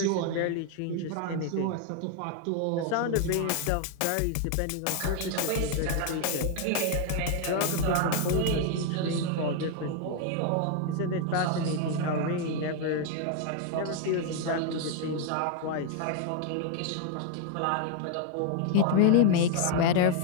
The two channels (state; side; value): different; both; correlation 0.00